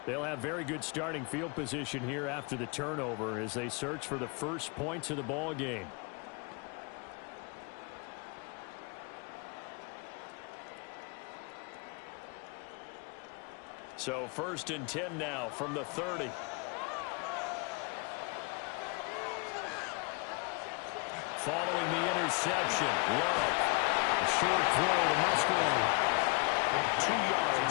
They'll have very good starting field position here after the turnover as they search for the first points of the ball game. So 1st and 10 now from the 30. Following the interception, Love. A short throw to Musgrave. 2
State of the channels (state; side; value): quieter; right; 30.7 dB